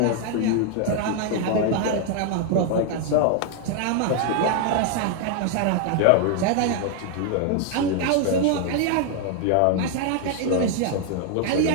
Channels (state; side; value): different; both; correlation 0.00